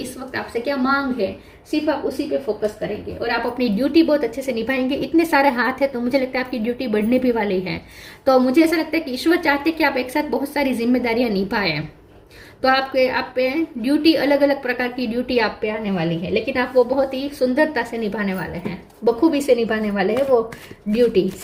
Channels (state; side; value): identical; both; correlation 1.00